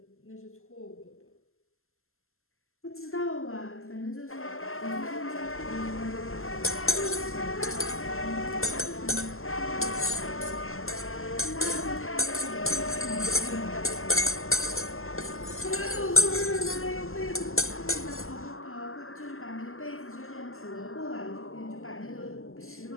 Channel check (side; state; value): right; late; 0.62 ms